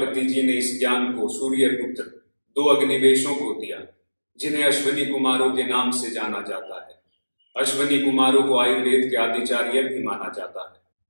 जी ने इस ज्ञान को सूर्य पुत्र 2 अग्निवेशों को दिया, जिन्हें अश्विनी कुमारों के नाम से जाना जाता है। अश्विनी कुमारों को आयुर्वेद के आदिचार्य भी माना जाता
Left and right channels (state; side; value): inverted; both; correlation -1.00